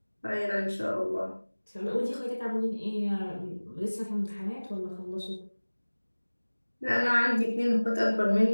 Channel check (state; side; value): inverted; both; correlation -1.00